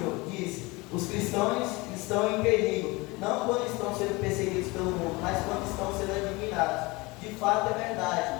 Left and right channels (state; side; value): quieter; right; 24.2 dB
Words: disse: os cristãos estão em perigo, não quando estão sendo perseguidos pelo mundo, mas quando estão sendo admirados. De fato é verdade.